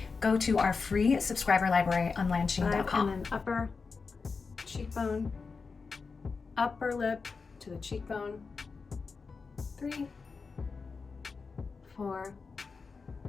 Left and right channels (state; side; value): quieter; right; 4.7 dB